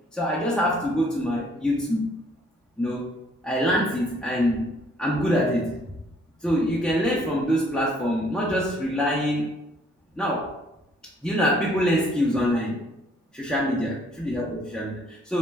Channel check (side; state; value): both; normal; correlation 0.63